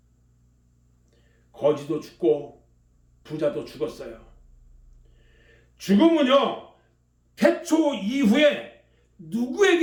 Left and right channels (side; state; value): both; identical; correlation 1.00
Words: 거지도 죽고 부자도 죽었어요. 죽음은요 태초 이후에